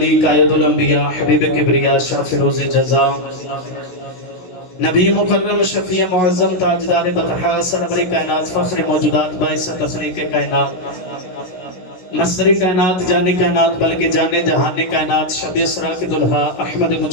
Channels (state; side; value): late; right; 16 ms